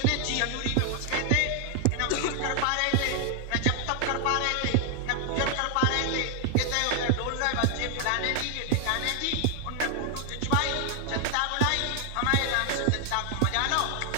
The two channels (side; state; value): both; different; correlation 0.00